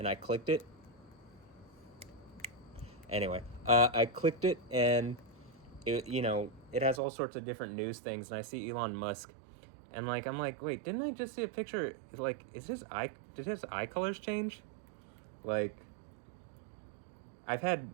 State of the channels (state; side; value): drops out; left; at 7.0 s